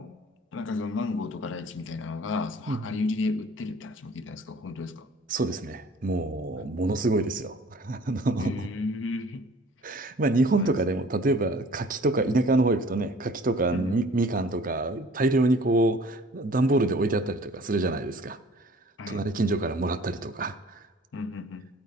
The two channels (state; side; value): normal; both; correlation 0.50